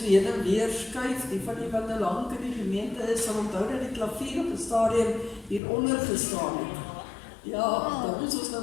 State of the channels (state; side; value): drops out; right; at 5.6 s